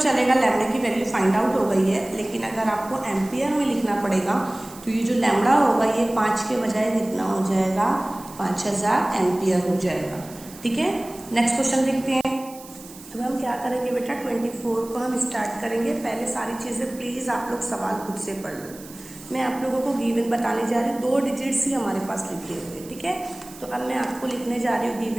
चलेगा, लैम्बडा की वैल्यू फाइंड आउट हो गई है, लेकिन अगर आपको एम्पियर में लिखना पड़ेगा तो ये जो लैम्बडा होगा ये 5 के बजाय कितना हो जाएगा, 5000 एम्पियर हो जाएगा। ठीक है, नेक्स्ट क्वेश्चन देखते हैं। अब हम क्या करेंगे बेटा, 24 को हम स्टार्ट करेंगे। पहले सारी चीज़ें प्लीज़ आप लोग सवाल खुद से पढ़ लो। मैं आप लोगों को गिवन बताने जा रही हूँ, 2 डिजिट्स ही हमारे पास लिखे हुए। ठीक है, तो अब मैं आपको लिखने जा रही हूँ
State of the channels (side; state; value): right; noise; hiss, 18 dB below the sound